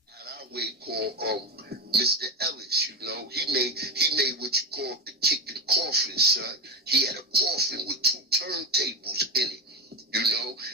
Called Mr. Ellis, he made what you call the kicking coffin, son. He had a coffin with 2 turntables in it,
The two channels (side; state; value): both; normal; correlation 0.17